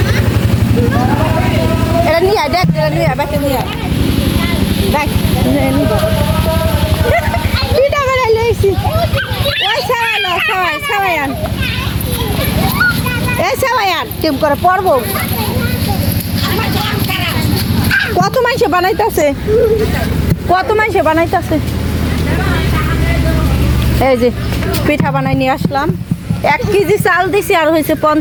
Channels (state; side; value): identical; both; correlation 1.00